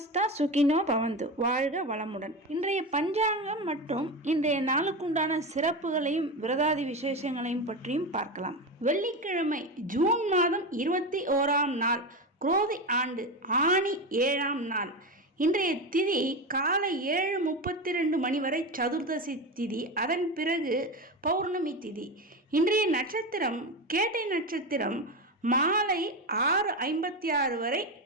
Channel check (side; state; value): both; normal; correlation 0.19